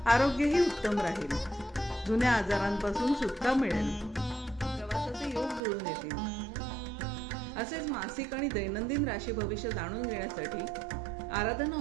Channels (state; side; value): drops out; left; at 5.6 s